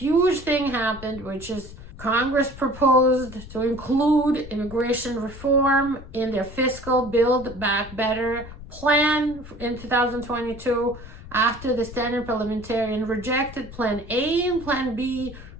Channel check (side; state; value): left; noise; rumble, 15 dB below the sound